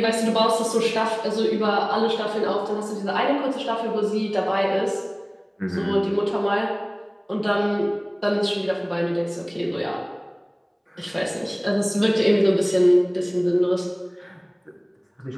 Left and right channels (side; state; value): both; identical; correlation 1.00